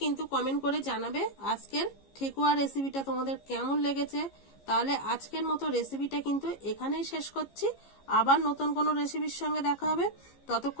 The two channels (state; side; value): late; right; 15 ms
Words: কিন্তু কমেন্ট করে জানাবে আজকের ঠেকুয়া রেসিপিটা তোমাদের কেমন লেগেছে। তাহলে আজকের মতো রেসিপিটা কিন্তু এখানেই শেষ করছি। আবার নতুন কোনো রেসিপির সঙ্গে দেখা হবে।